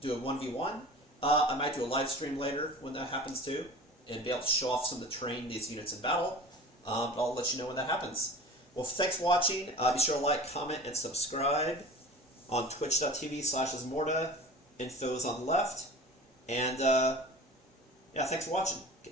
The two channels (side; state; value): both; normal; correlation 0.39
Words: a 1v1, I might do a live stream later when that happens too, and be able to show off some of the terrain these units in battle. But I'll let you know when that happens. Well, thanks for watching. Be sure to like, comment, and subscribe on twitch.tv/Ismortah. Info's on the left. And, yeah, thanks for watching.